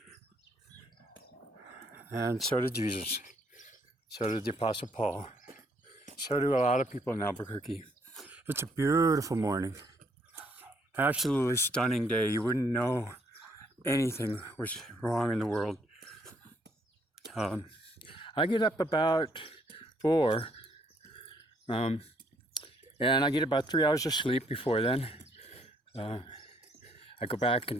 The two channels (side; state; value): both; normal; correlation 0.69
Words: and so did Jesus. So did the Apostle Paul. So do a lot of people in Albuquerque. It's a beautiful morning, absolutely stunning day. You wouldn't know anything was wrong in the world. I get up about 4, and I get about 3 hours of sleep before then. I go back